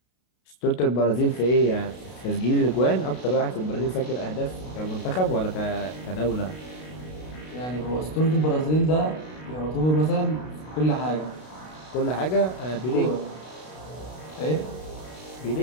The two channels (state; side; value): late; right; 32 ms